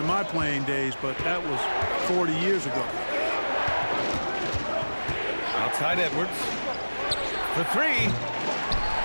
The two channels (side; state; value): both; inverted; correlation -1.00